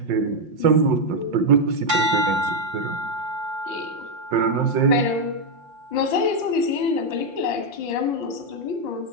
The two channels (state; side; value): late; left; 5.6 ms